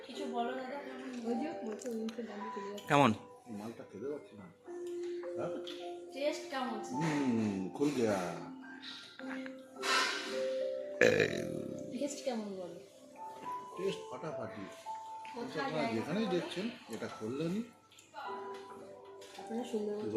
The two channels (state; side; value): identical; both; correlation 1.00